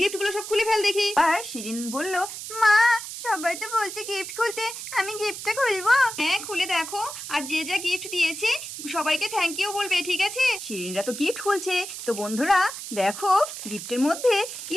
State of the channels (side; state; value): right; noise; hiss, 9 dB below the sound